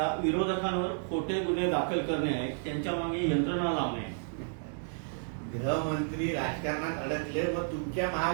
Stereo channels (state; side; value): silent; left; digital silence